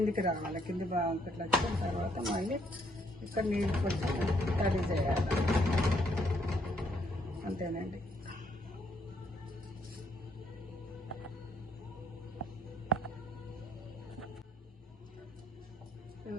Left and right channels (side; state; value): both; normal; correlation 0.70